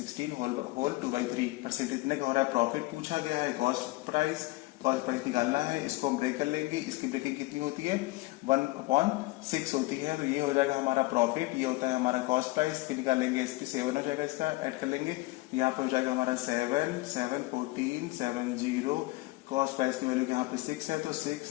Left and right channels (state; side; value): quieter; right; 21.5 dB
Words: होल 2/3%। इतने का हो रहा है प्रॉफिट पूछा गया है। कॉस्ट प्राइस निकालना है, इसको हम ब्रेक कर लेंगे। इसकी ब्रेकिंग कितनी होती है, 1/6 होती है, तो ये हो जाएगा हमारा प्रॉफिट, ये होता है हमारा कॉस्ट प्राइस। फिर निकालेंगे एसपी 7 हो जाएगा, इसका ऐड कर लेंगे, यहाँ पर हो जाएगा हमारा 7 7 14 70, कॉस्ट प्राइस की वैल्यू यहाँ पे 6 है, तो 6